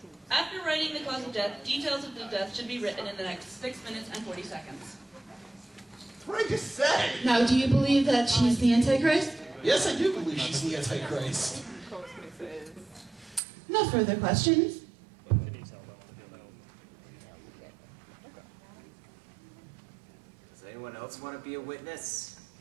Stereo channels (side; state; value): left; drops out; at 13.4 s